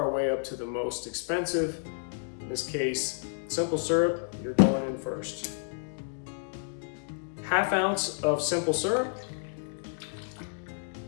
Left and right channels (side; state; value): right; silent; digital silence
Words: way up to the most expensive. In this case, simple syrup, you're going in first. 1/2 ounce of simple syrup.